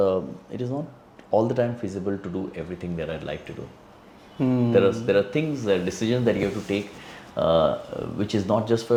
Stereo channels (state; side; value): identical; both; correlation 1.00